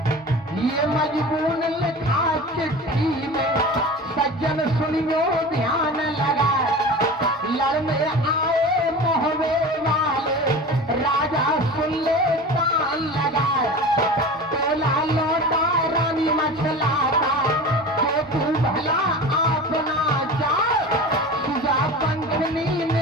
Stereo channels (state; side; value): normal; both; correlation 0.34